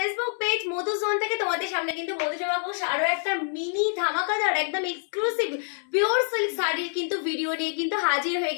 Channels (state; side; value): silent; right; 61 dB below the other